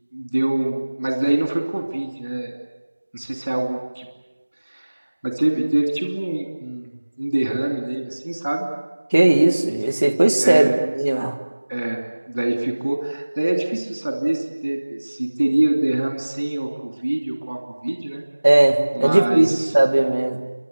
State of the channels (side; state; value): both; inverted; correlation -1.00